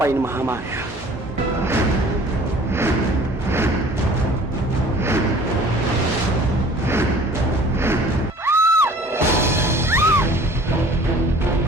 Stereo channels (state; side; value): normal; both; correlation 0.49